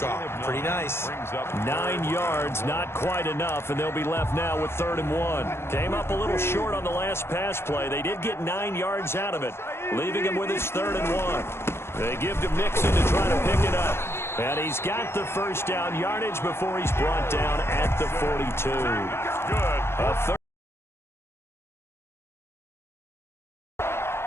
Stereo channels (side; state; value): right; late; 0.12 ms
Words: Pretty nice. 9 yards, not quite enough, and they'll be left now with 3rd and 1. Came up a little short on the last pass play. They did get 9 yards out of it, leaving him with his 3rd and 1. They give to Mixon to try to pick it up. And he's got the first down yardage before he's brought down at the 42. Good.